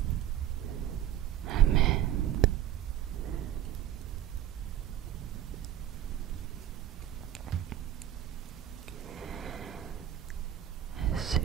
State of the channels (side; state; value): left; quieter; 11.4 dB